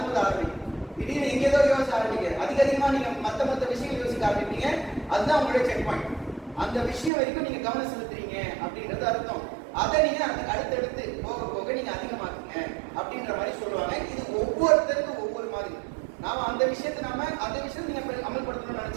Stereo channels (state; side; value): drops out; left; at 7.1 s